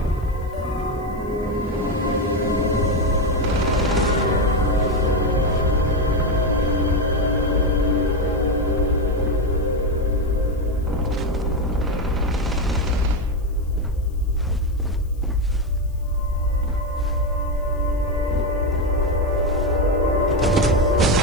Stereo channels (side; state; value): left; noise; hiss, 30 dB below the sound